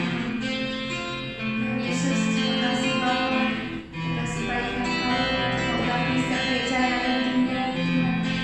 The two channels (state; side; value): identical; both; correlation 1.00